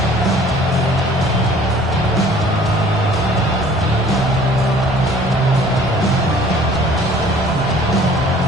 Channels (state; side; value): noise; right; rumble, 15 dB below the sound